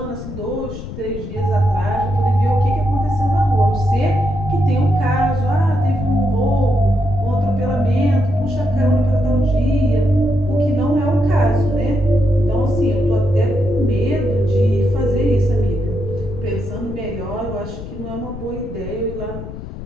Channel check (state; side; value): noise; left; rumble, 10 dB below the sound